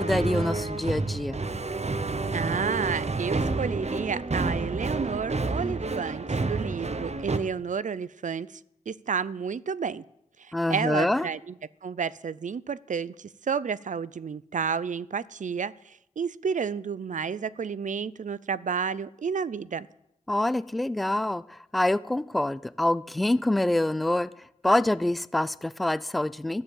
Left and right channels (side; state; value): both; normal; correlation 0.69